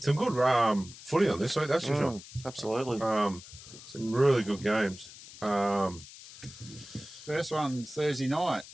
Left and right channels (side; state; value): left; noise; hiss, 17 dB below the sound